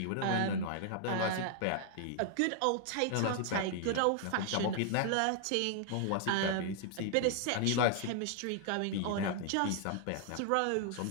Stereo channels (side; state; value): both; different; correlation 0.00